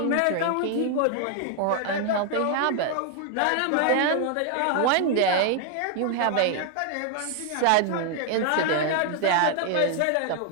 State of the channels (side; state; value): both; different; correlation 0.00